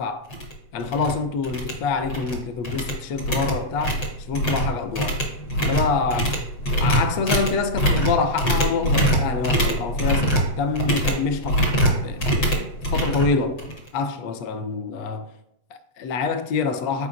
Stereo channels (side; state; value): right; late; 7.7 ms